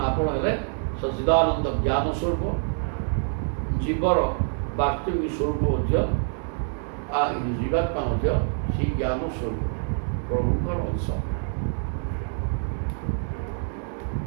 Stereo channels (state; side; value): silent; left; 61 dB below the other